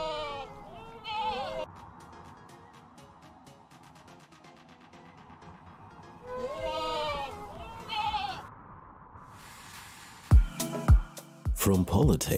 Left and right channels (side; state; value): both; identical; correlation 1.00